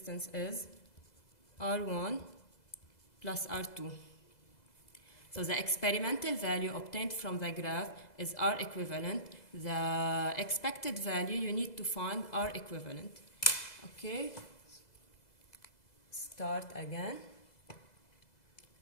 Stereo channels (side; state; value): right; late; 2.0 ms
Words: is R1 plus R2. So the experimental value obtained from the graph is R equivalent. The expected value you need to find R equivalent. Okay, start again.